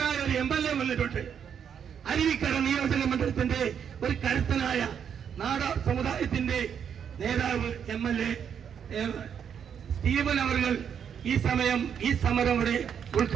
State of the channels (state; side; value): quieter; left; 8.0 dB